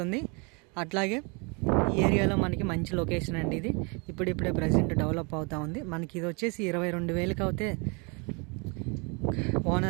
అట్లాగే ఈ ఏరియాలో మనకి మంచి లొకేషన్ అండి. ఇది ఇప్పుడిప్పుడే ప్రజెంట్ డెవలప్ అవుతూ ఉంది. మనకి ఇది వచ్చేసి 22,000కి అయితే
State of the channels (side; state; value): left; quieter; 31.9 dB